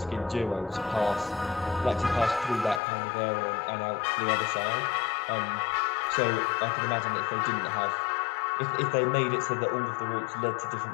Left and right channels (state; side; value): drops out; right; at 2.8 s